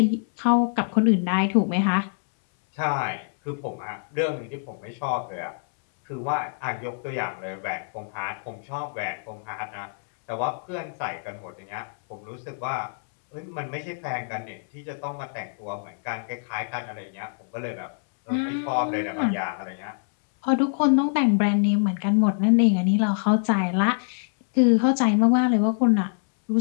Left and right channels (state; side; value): silent; right; 62 dB below the other